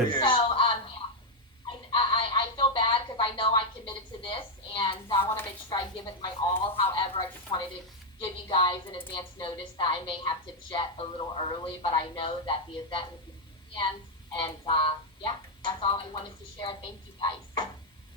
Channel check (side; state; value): both; normal; correlation 0.01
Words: So, I feel bad because I know I committed to this, and I want to make sure I give it my all. However, I just wanted to give you guys an advance notice that I may have to jet a little early, but I know that the event will be planned, and yeah, that's all I wanted to share. Thank you, guys.